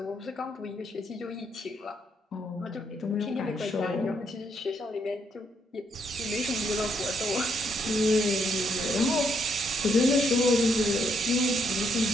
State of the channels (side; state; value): both; normal; correlation 0.74